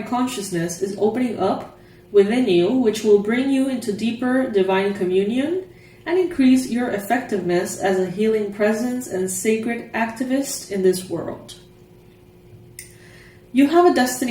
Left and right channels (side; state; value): both; identical; correlation 1.00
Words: consciousness is opening up within you, which will bring you into deeper divine communion and increase your effectiveness as a healing presence and sacred activist in this world. You have a